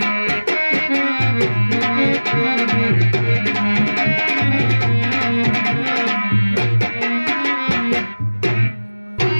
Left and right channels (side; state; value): both; inverted; correlation -1.00